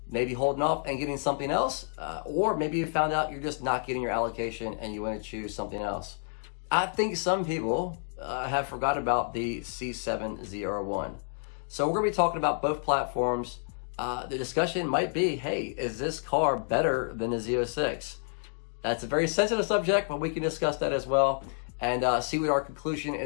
maybe holding off and getting something else, or maybe you found out you're just not getting your allocation and you want to choose something else. I think some people have forgot about the C7 ZR1. So we're going to be talking about both platforms. The discussion might be, hey, is this car better than the Z06? That's a very sensitive subject, but we can discuss that as well and see what our conclusion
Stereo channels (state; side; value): silent; right; 58 dB below the other